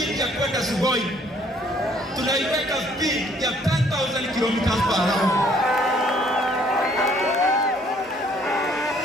ya kwenda Sugoi, tunaiweka speed ya 10,000 kilometers per hour.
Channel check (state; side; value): normal; both; correlation 0.62